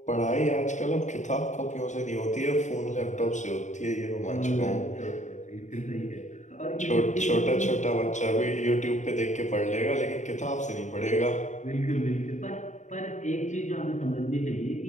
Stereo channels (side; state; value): right; late; 0.35 ms